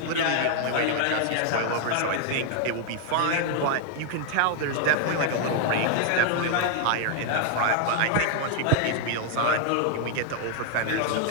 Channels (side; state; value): both; different; correlation 0.00